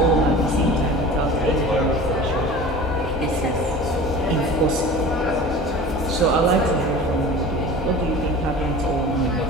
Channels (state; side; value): normal; both; correlation 0.38